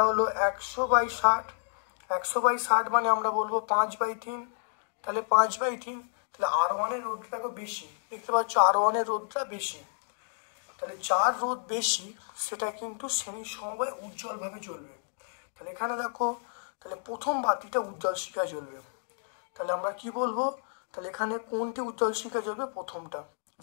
হলো 100 বাই 60, 100 বাই 60 মানে আমরা বলবো 5/3, তাহলে 5/3, তাহলে আর ওয়ানের রোধটা বেশি, দেখতে পাচ্ছ আর ওয়ানের রোধটা বেশি, তাহলে যার রোধ বেশি সেটা কিন্তু শ্রেণীর সমবায় উজ্জ্বলভাবে জ্বলবে। তাহলে এখানে দেখো, তাহলে প্রথম বাতিটা উজ্জ্বল শিখা জ্বলবে, তাহলে আমরা কি বলবো, তাহলে এখানে কোনটি উজ্জ্বল শিখা জ্বলবে, প্রথমটা,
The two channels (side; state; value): right; silent; digital silence